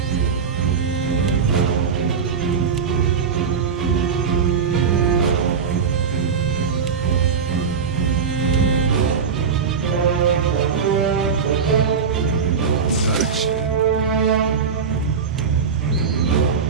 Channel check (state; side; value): quieter; left; 6.1 dB